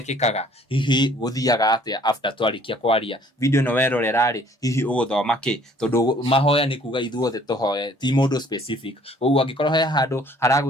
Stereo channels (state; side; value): normal; both; correlation 0.57